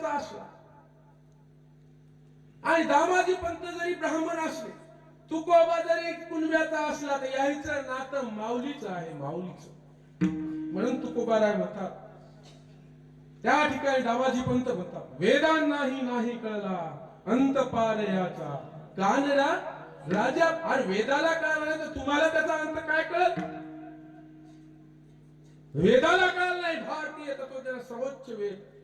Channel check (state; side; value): identical; both; correlation 1.00